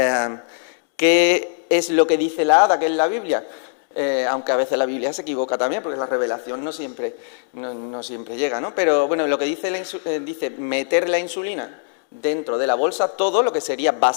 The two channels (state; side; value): silent; right; digital silence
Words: ¿Qué es lo que dice la ADA, que es la Biblia? Aunque a veces la Biblia se equivoca también, porque la revelación no siempre llega, ¿no? Pero bueno, lo que dice dice meter la insulina dentro de la bolsa, todo lo que sería